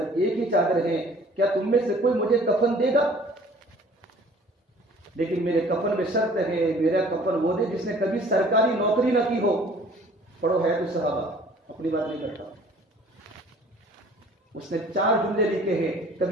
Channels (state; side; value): normal; both; correlation 0.52